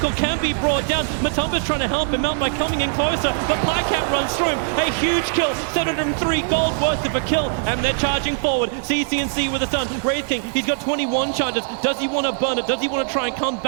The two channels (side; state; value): left; silent; 65 dB below the other